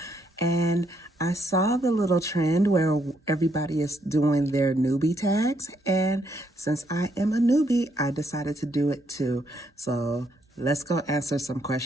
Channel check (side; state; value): both; normal; correlation 0.74